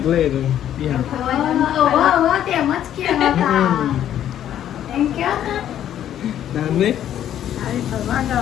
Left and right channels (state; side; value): quieter; right; 10.9 dB